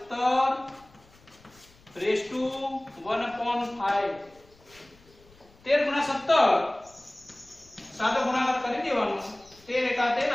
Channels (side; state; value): left; noise; rumble, 28 dB below the sound